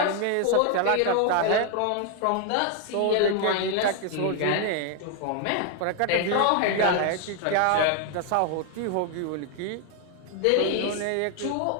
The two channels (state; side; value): different; both; correlation 0.01